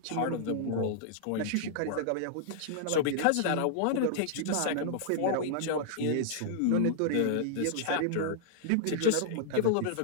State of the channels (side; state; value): both; different; correlation -0.01